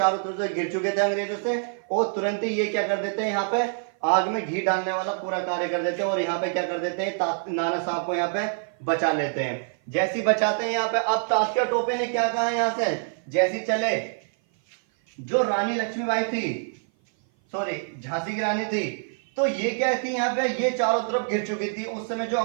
तरफ से घिर चुके थे अंग्रेजों से, और तुरंत ही ये क्या कर देते हैं, यहाँ पे आग में घी डालने वाला पूरा कार्य कर देते हैं, और यहाँ पे क्या कर देते हैं, नाना साहब को यहाँ पे बचा लेते हैं। जैसी बचाते हैं यहाँ पे। अब तात्या टोपे ने क्या कहा यहाँ से, जैसी चले, जो रानी लक्ष्मीबाई थी, सॉरी झांसी की रानी थी, तो ये क्या थी यहाँ पे, ये चारों तरफ घिर चुकी थी। उस समय जो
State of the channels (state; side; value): silent; left; 55 dB below the other